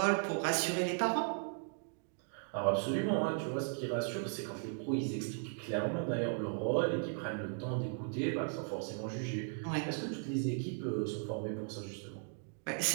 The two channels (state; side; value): silent; left; 53 dB below the other